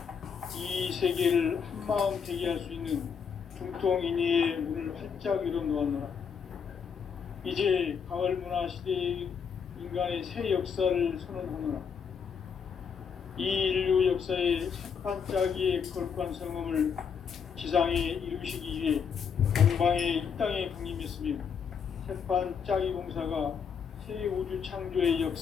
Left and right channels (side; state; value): right; quieter; 6.7 dB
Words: 이 세계를 한마음 되게 할 수 있는 중통인의의 문을 활짝 열어놓았노라. 이제 가을 문화 시대의 인간의 새 역사를 선언하노라. 이 인류 역사의 새판 짜기의 거룩한 성음을 지상에 이루시기 위해 동방의 이 땅에 강림했으며 새판 짜기 공사가 새 우주 창조의